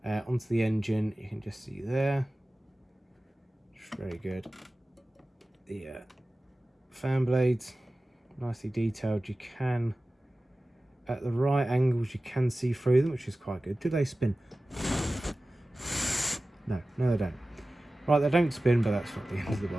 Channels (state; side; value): normal; both; correlation 0.96